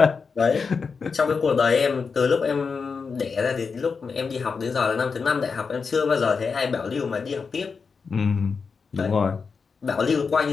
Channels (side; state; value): right; quieter; 5.2 dB